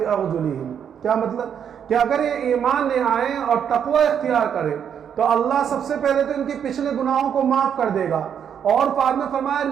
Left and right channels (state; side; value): quieter; left; 8.3 dB